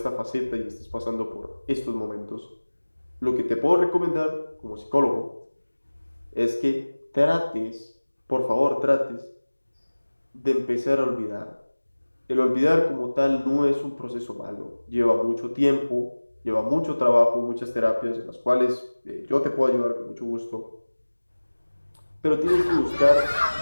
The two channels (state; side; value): inverted; both; correlation -1.00